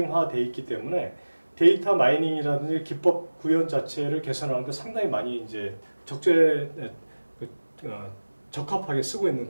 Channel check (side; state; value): both; inverted; correlation -1.00